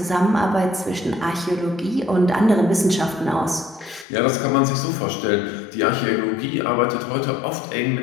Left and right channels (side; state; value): right; drops out; at 4.0 s